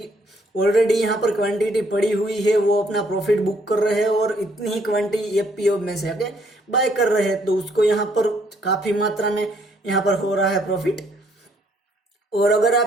ऑलरेडी यहाँ पर क्वांटिटी पड़ी हुई है वो अपना प्रॉफिट बुक कर रहे हैं और इतनी ही क्वांटिटी एफपीओ में से आके बाय कर रहे हैं, तो उसको यहाँ पर काफी मात्रा में यहाँ पर हो रहा है प्रॉफिट। और अगर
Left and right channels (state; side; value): normal; both; correlation 0.67